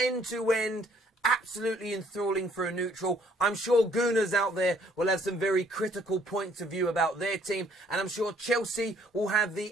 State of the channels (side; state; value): both; normal; correlation 0.63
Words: absolutely enthralling for a neutral. I'm sure Gooners out there will have some very critical points of view about their team, and I'm sure Chelsea will have